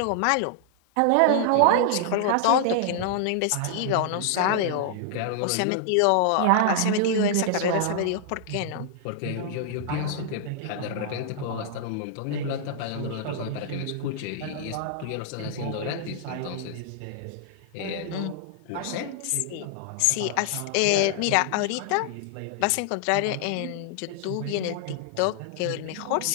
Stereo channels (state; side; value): different; both; correlation -0.01